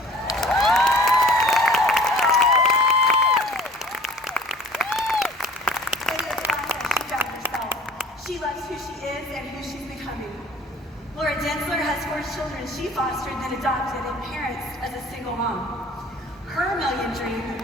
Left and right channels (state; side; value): normal; both; correlation 0.48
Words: She loves who she is and who she's becoming. Laura Densler has 4 children she fostered then adopted and parents as a single mom. Her million dream